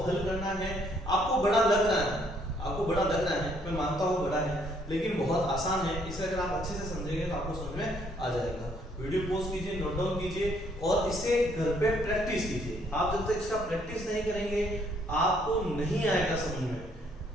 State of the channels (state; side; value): normal; both; correlation 0.67